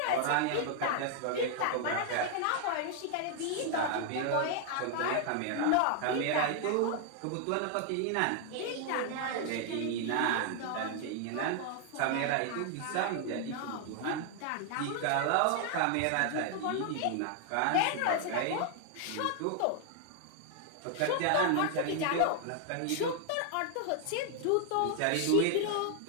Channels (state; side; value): different; both; correlation 0.00